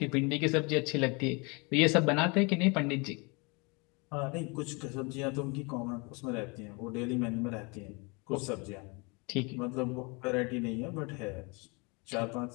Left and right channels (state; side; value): quieter; right; 29.9 dB